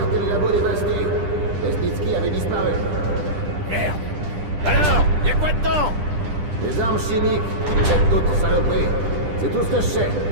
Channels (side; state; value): left; late; 10 ms